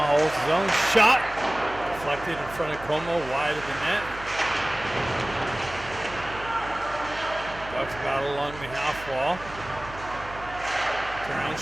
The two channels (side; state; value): right; noise; hum, 15 dB below the sound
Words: holds his own. Shot. Deflected in front of Como. Wide of the net. Bucks battle along the half wall. Turn around